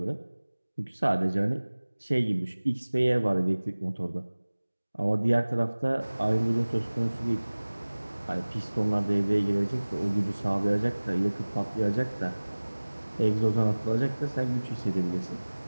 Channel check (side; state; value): both; inverted; correlation -1.00